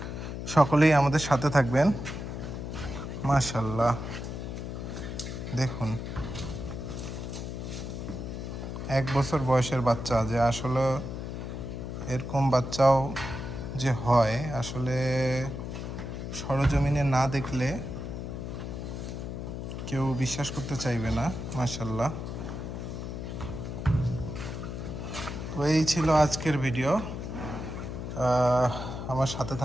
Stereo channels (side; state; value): left; noise; hum, 6 dB below the sound